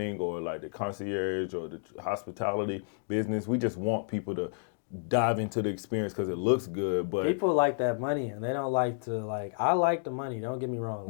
or like the concierge or the hospitality business. We just want people to dive into the experience because it looks good, but people like that money and they don't like to I like the money, don't get me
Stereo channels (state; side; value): silent; right; digital silence